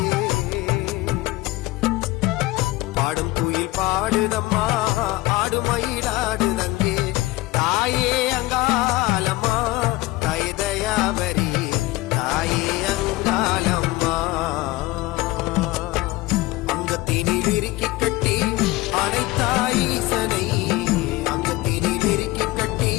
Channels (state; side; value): quieter; right; 19.2 dB